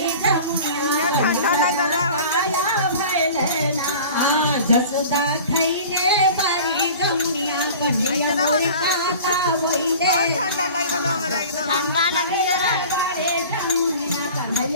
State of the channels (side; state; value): both; inverted; correlation -0.41